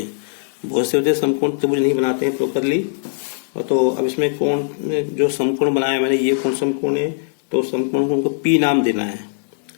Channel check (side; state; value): right; silent; 60 dB below the other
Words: बहुत से होते समकोण त्रिभुज नहीं बनाते हैं प्रॉपरली। तो अब इसमें कोण जो समकोण बनाया मैंने, ये कौन समकोण है, तो समकोण को हमको पी नाम देना है।